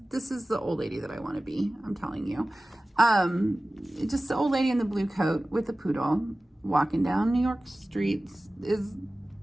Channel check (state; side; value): normal; both; correlation 0.97